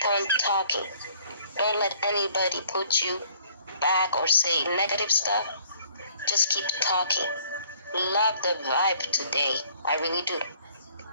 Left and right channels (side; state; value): both; inverted; correlation -0.58